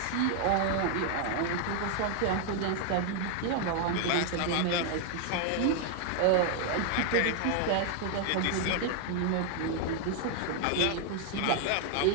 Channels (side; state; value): both; different; correlation 0.00